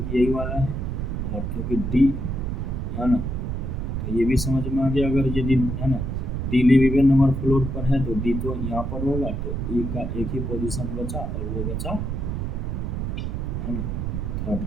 यही वाला है, और क्योंकि D है ना, तो ये भी समझ में आ गया। अगर यदि है ना D live even number floor पर है तो D तो यहाँ पर होगा, तो E का एक ही पोजीशन बचा, और वो बचा है ना थर्ड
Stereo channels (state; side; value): noise; right; rumble, 2 dB below the sound